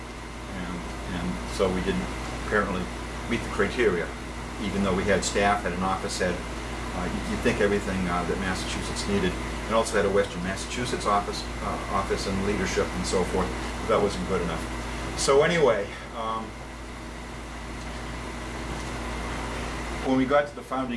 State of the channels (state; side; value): identical; both; correlation 1.00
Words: And so we didn't apparently meet the criteria, even though we had staff, had an office, had, you'd think everything that Massachusetts needed, and also had a Western Massachusetts office and leadership and so forth. But that wasn't good enough. So anyway, when we got to the